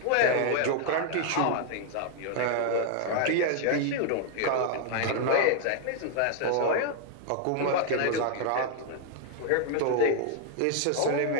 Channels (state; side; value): different; both; correlation 0.00